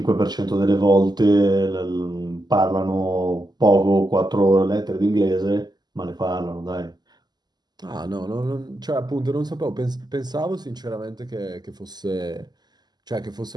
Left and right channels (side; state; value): left; late; 0.20 ms